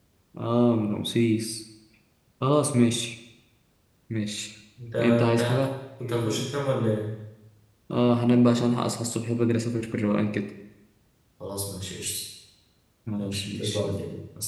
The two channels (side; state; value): both; identical; correlation 1.00